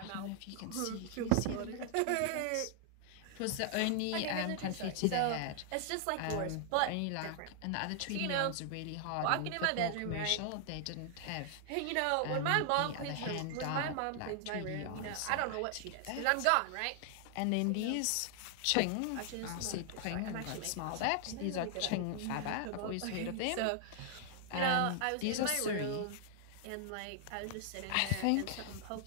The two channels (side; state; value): both; different; correlation 0.00